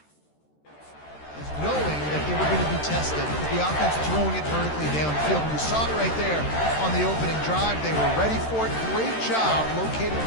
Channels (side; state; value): right; late; 13 ms